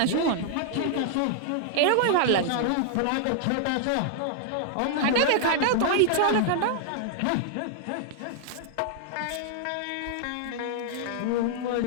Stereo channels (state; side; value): different; both; correlation -0.01